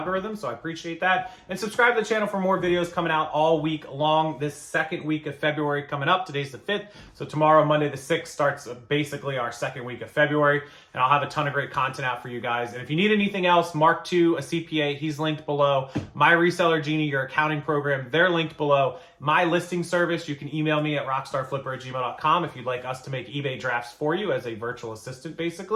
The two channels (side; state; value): both; identical; correlation 1.00